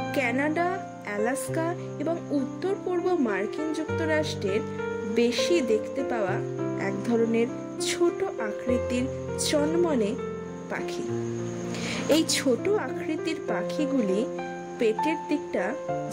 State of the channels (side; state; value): both; identical; correlation 1.00